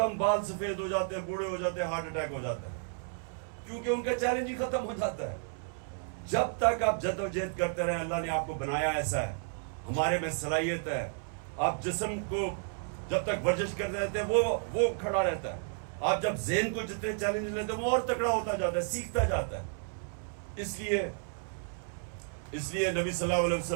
बाल सफेद हो जाते हैं, बूढ़े हो जाते हैं, हार्ट अटैक हो जाता है, क्योंकि उनका चैलेंज ही खत्म हो जाता है। जब तक आप जद्दोजहद करते रहे, अल्लाह ने आपको बनाया ऐसा है, हमारे में सलाहियत है। आप जिस्म को जब तक वर्जिश करते रहते हैं वो खड़ा रहता है। आप जब ज़हन को जितने चैलेंज लेते हैं वो और तगड़ा होता जाता है, सीखता जाता है। इसलिए नबी सल्लल्लाहु अलैहि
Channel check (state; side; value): silent; left; 56 dB below the other